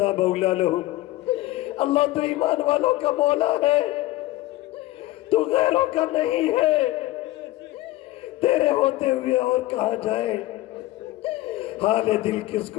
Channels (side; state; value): right; quieter; 17.4 dB